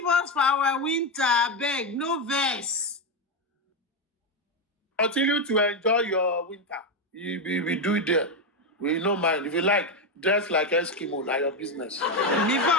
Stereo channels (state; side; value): normal; both; correlation 0.08